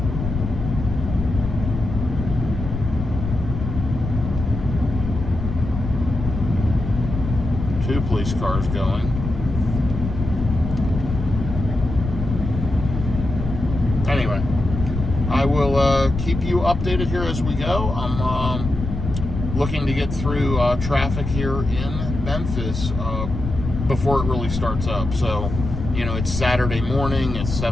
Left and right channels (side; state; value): left; noise; rumble, 5 dB below the sound